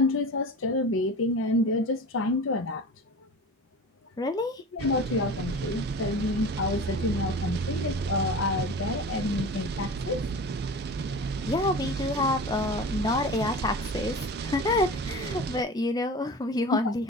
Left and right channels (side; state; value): both; normal; correlation 0.34